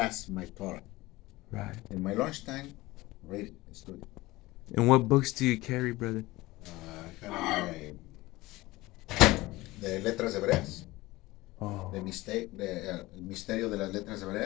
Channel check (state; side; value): quieter; right; 19.6 dB